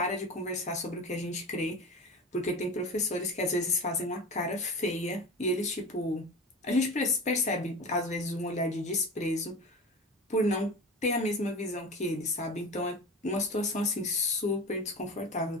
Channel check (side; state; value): both; normal; correlation 0.31